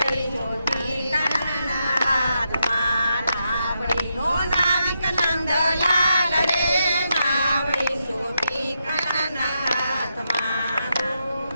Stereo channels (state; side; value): inverted; both; correlation -0.83